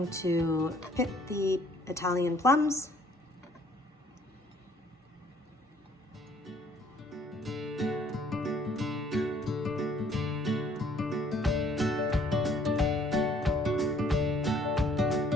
to pip the Italian plums.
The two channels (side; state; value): both; normal; correlation 0.61